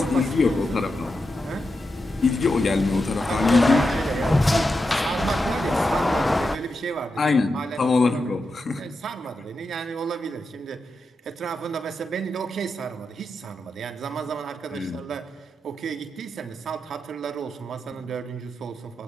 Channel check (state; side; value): normal; both; correlation 0.88